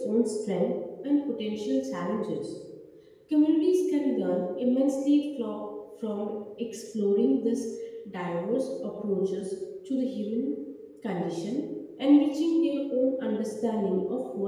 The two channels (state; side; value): identical; both; correlation 1.00